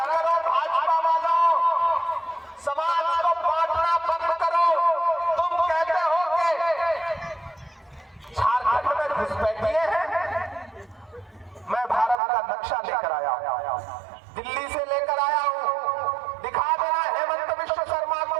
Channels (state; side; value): drops out; left; at 12.2 s